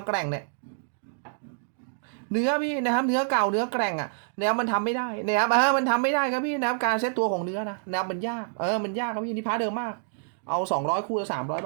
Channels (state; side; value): silent; left; digital silence